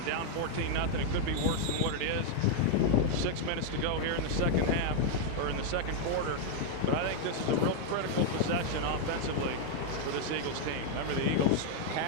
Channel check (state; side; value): different; both; correlation 0.00